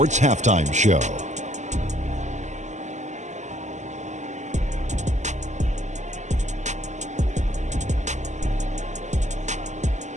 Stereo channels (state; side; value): late; left; 0.34 ms